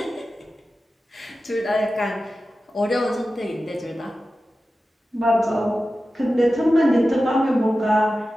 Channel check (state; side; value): normal; both; correlation 0.94